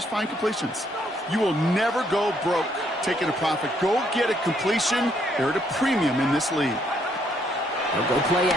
find completions. You will never go broke taking a profit. Go get a completion. They're at a premium in this league. They'll go play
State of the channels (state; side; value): normal; both; correlation 0.71